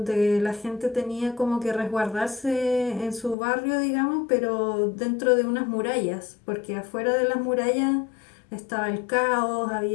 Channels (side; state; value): right; drops out; at 3.4 s